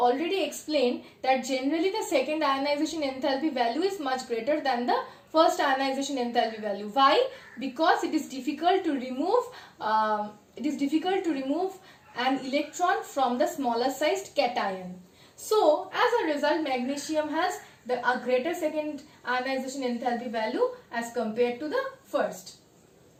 explained that generally the second ionization enthalpy value is much greater than the first ionization enthalpy value. Why? Because it is difficult to remove an electron from the smaller sized cation. So as a result, magnesium has a greater second ionization enthalpy value as compared to the first.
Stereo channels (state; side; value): identical; both; correlation 1.00